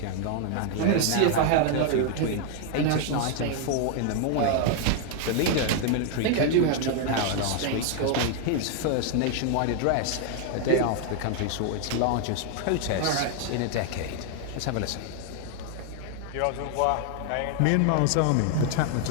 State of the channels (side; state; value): both; different; correlation 0.00